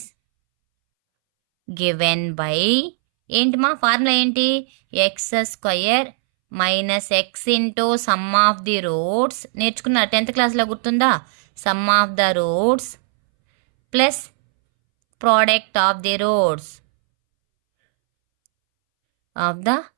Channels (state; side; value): silent; left; 65 dB below the other